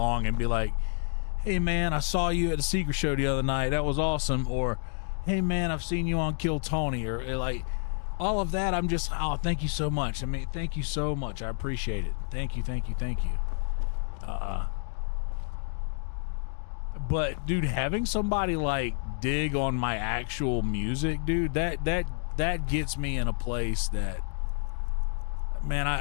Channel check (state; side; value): silent; right; 58 dB below the other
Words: and be like, hey, man, I saw you at the Secret Show the other night. That was awesome. Or, hey, man, I've seen you on Kill Tony. Or like, all of that, I'm just, oh, thank you so much. I mean, thank you so much. I appreciate it. Thank you. But, dude, having somebody, like, dig on my actual music, dude, that gets me in a place that, man,